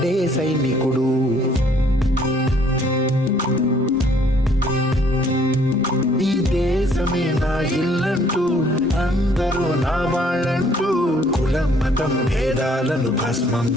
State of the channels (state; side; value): normal; both; correlation 0.62